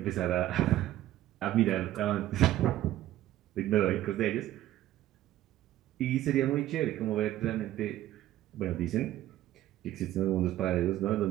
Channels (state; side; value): quieter; left; 13.8 dB